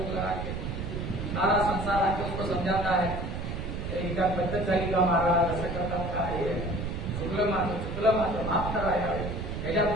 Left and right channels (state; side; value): noise; right; rumble, 5 dB below the sound